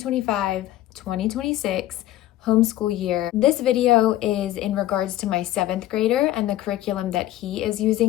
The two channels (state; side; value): quieter; right; 14.2 dB